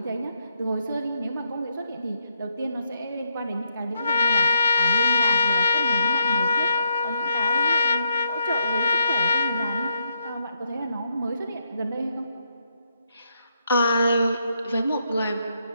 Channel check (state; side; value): inverted; both; correlation -0.78